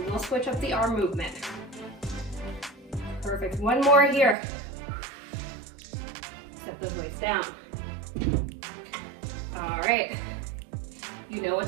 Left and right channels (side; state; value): left; drops out; at 4.4 s